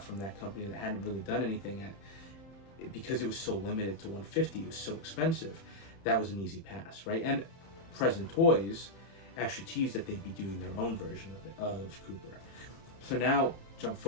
that company that hadn't really done anything because it was so limited to 150, it was so expensive, that was an easy pass, right? And Present Toys actually teased that they'd be doing their own version of Cooper. So now, jump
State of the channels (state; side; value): late; right; 30 ms